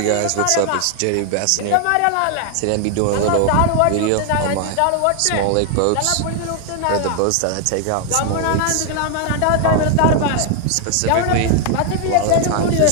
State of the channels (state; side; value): different; both; correlation 0.00